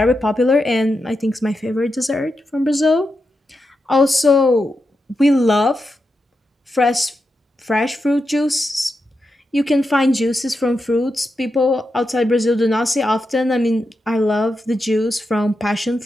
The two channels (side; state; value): both; normal; correlation 0.87